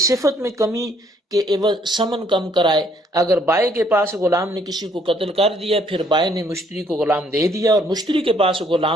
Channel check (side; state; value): both; normal; correlation 0.65